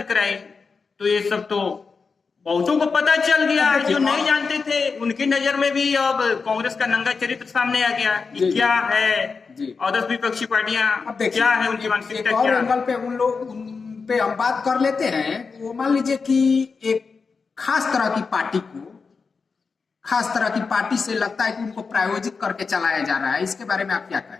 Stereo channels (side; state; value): right; quieter; 4.9 dB